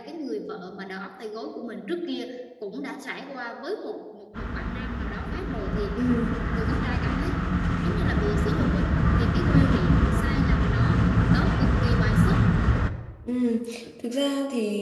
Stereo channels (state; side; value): identical; both; correlation 1.00